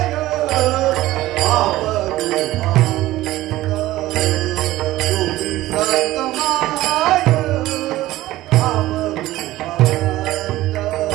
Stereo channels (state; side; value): quieter; left; 16.3 dB